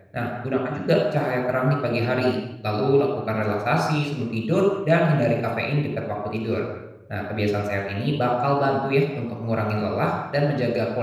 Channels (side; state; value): both; identical; correlation 1.00